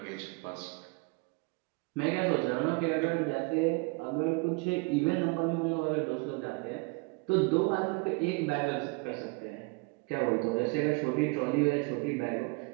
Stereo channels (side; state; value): left; quieter; 29.3 dB